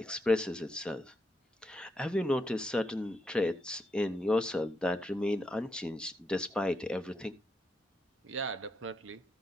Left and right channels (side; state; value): both; normal; correlation 0.81